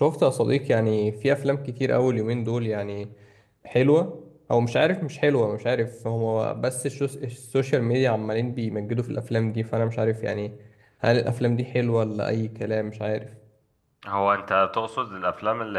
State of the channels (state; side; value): identical; both; correlation 1.00